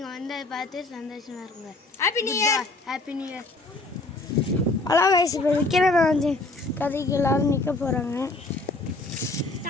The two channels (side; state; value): right; quieter; 3.1 dB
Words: வந்து அதை பார்த்து சந்தோஷமாக இருங்க. Happy new year. Happy new year. Hello guys, இப்போ விக்ரமாதித்தியன் கதைக்கு எல்லாரும் நிற்க போகிறாங்க.